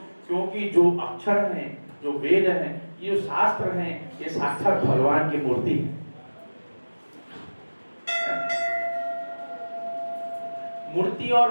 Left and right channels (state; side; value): inverted; both; correlation -1.00